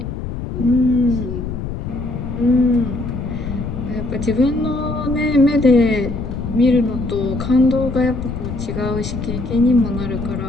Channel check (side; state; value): left; noise; rumble, 6 dB below the sound